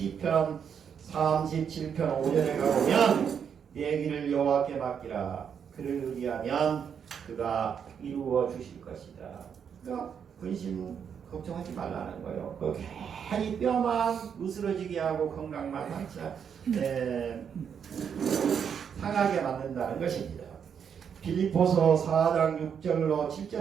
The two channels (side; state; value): left; quieter; 7.5 dB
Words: 37편 5절에 가보면 내 길을 여호와께 맡기라. 그를 의지하면 그가 이루어 주실 것이다. 그러니까 근심 걱정하지 말라는 거예요. 그 괜히 뼈만 으스러지게 하고 건강만 상하게 만든다는 것입니다. 빌립보서 4장 6절로